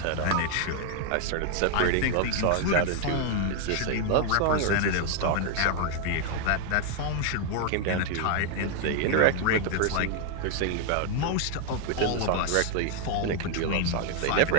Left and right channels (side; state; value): both; different; correlation 0.00